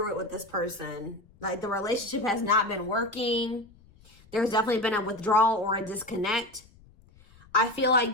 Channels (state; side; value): noise; left; rumble, 26 dB below the sound